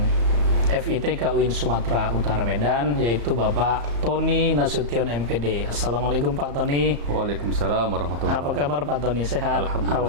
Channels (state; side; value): late; left; 34 ms